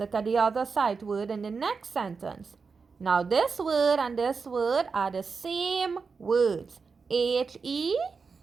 at the other sight word in the next sentence. Now, this word and this word are the same words. H-E,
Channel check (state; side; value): quieter; left; 5.0 dB